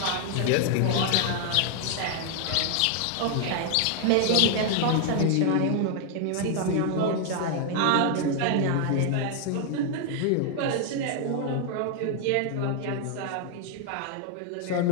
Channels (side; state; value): both; different; correlation 0.00